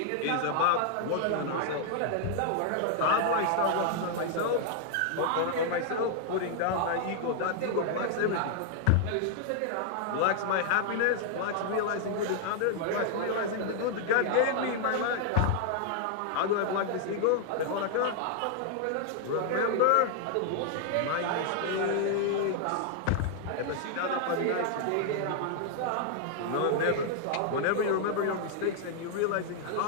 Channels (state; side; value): different; both; correlation -0.01